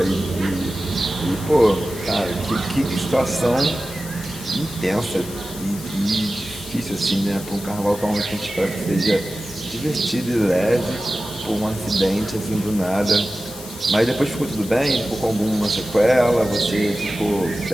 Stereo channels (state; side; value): noise; left; hiss, 14 dB below the sound